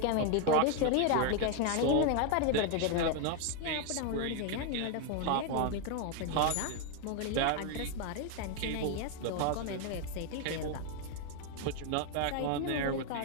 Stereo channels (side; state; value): both; different; correlation 0.01